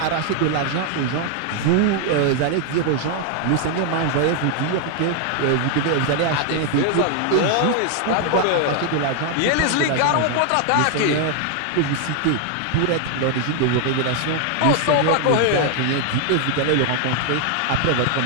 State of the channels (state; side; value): different; both; correlation 0.00